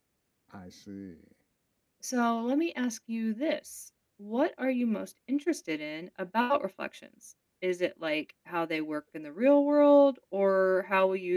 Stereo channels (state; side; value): identical; both; correlation 1.00